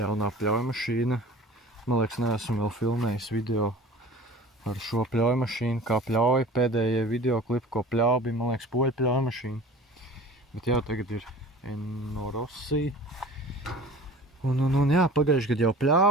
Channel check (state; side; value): normal; both; correlation 0.42